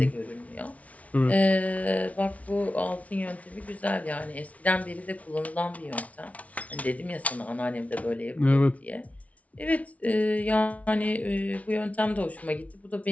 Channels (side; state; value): right; late; 0.067 ms